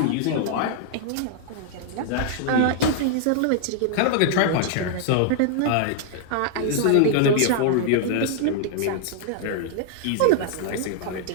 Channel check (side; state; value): both; different; correlation -0.01